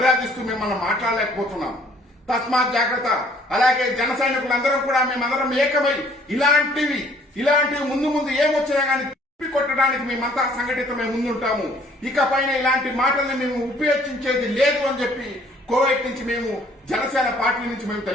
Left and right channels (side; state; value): both; normal; correlation 0.59